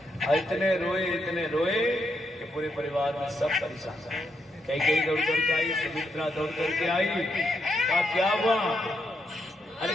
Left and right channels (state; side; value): normal; both; correlation 0.80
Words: इतने रोए कि पूरे परिवार में सब परेशान। कई दौड़ करके आई, सुमित्रा दौड़ करके आई, कहा क्या हुआ, अरे